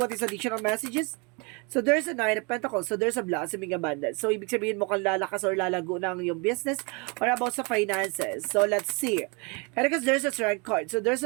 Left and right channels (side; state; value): left; quieter; 31.1 dB